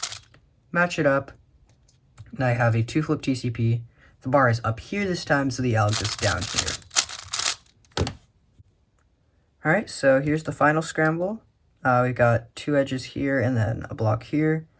Match it up, and I have a 2-flip TCP. The bar is up here this time, so the alg is down here. Alright, so here's the final scramble. We've got 2 edges here and then a block here.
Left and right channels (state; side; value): identical; both; correlation 1.00